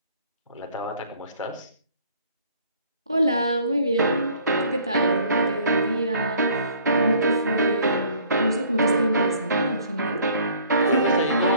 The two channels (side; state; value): both; inverted; correlation -0.56